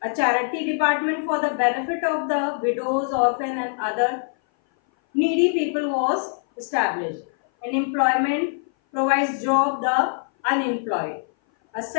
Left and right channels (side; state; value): right; silent; 58 dB below the other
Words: A charity department for the benefit of the widows, orphans and other needy people was established. An employment provides job the unemployed. A